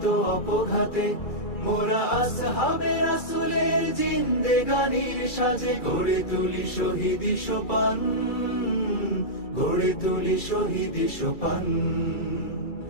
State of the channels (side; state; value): right; late; 2.3 ms